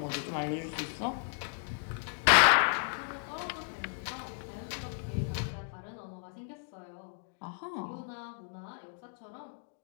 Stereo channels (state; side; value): silent; right; 55 dB below the other